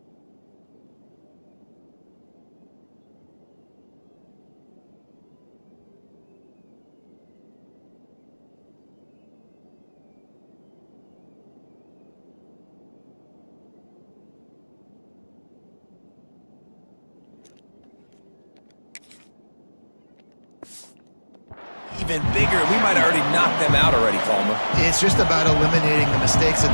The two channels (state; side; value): inverted; both; correlation -1.00